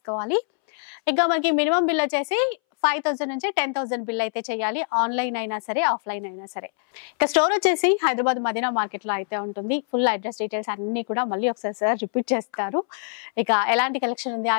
ఇక మనకి మినిమం బిల్ వచ్చేసి 5,000 నుంచి 10,000 బిల్ అయితే చేయాలి. ఆన్లైన్ అయినా సరే, ఆఫ్లైన్ అయినా సరే. ఇక స్టోర్ వచ్చేసి హైదరాబాద్ మదీనా మార్కెట్ లో అయితే ఉంటుంది. ఫుల్ అడ్రస్ డీటెయిల్స్ అన్ని కూడా మళ్ళీ ఒకసారి సార్ రిపీట్ చేస్తారు. ఇక ఎలాంటి కలెక్షన్ ఉంది,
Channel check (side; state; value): right; silent; 62 dB below the other